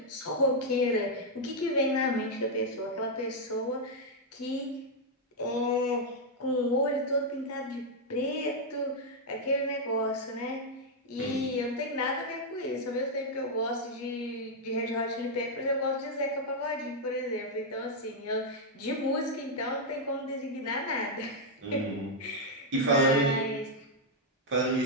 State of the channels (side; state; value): both; normal; correlation -0.02